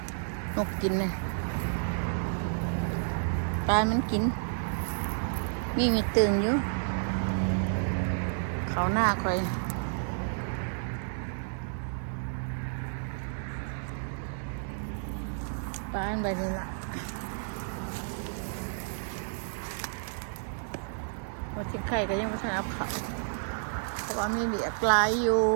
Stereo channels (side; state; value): left; silent; digital silence